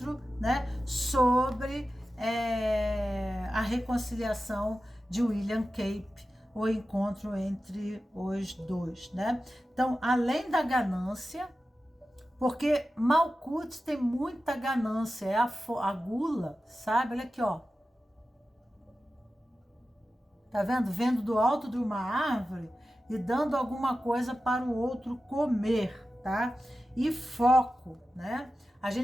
né, sobre a reconciliação de William Cape, o encontro entre os dois, né? Então, além da ganância, porque Malkuth tem muita ganância, é a gula, sabe? Olha aqui, ó. Tá vendo? Vendo do alto de uma árvore e dando alguma coisa para o outro comer, tá? E foco, né? A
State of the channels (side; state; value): both; normal; correlation 0.93